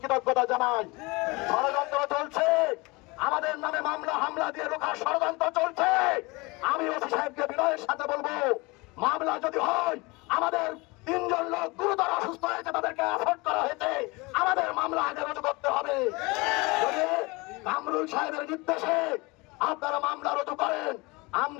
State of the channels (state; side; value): quieter; right; 25.3 dB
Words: কৃতজ্ঞতা জানাই। ষড়যন্ত্র চলছে, আমাদের নামে মামলা হামলা দিয়ে রোখার ষড়যন্ত্র চলছে। আমি ওসি সাহেবকে বিনয়ের সাথে বলবো, মামলা যদি হয়, আমাদের 3 জন লোক গুরুতর অসুস্থ হয়েছে, তাদেরকে অ্যাফোর্ড করা হয়েছে, আমাদের মামলা আগে রুজু করতে হবে। যদি কামরুল সাহেবের নির্দেশে আপনারা মামলা রুজু করেন,